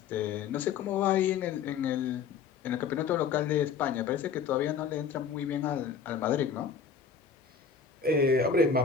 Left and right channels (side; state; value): right; quieter; 6.3 dB